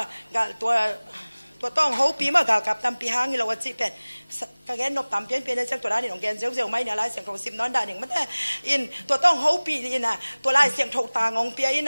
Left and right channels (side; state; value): both; inverted; correlation -1.00